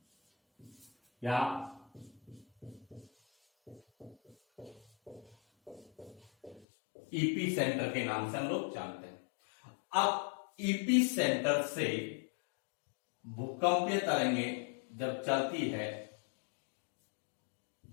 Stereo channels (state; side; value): drops out; right; at 6.7 s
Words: या ईपी सेंटर के नाम से हम लोग जानते हैं। अब ईपी सेंटर से भूकंपीय तरंगें जब चलती है